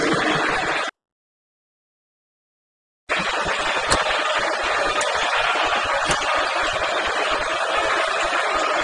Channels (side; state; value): both; identical; correlation 1.00